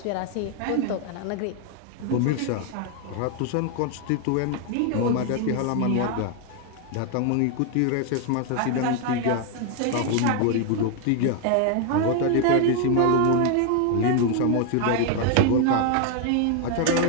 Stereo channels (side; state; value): both; different; correlation 0.01